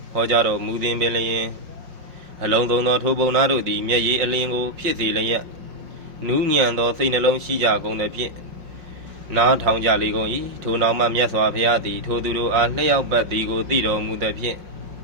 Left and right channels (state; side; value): late; left; 5.5 ms